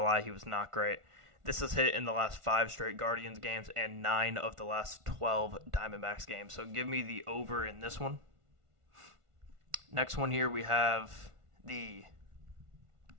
he was not great. This has hit in the last 5 straight Guardians games and 9 of the last 12 Diamondbacks games. So give me the over in this one. Next one here, we have the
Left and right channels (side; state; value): left; late; 1.5 ms